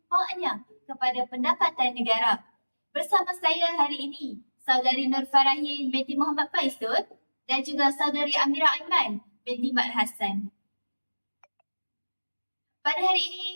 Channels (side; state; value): both; inverted; correlation -1.00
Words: kepada pendapatan negara. Bersama saya hari ini, Saudari Nur Farahin binti Muhammad Faizul dan juga Saudari Amira Aiman binti Mat Hassan. Pada hari ini,